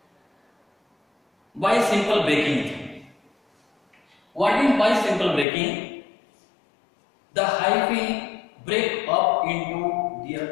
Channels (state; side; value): drops out; right; at 5.5 s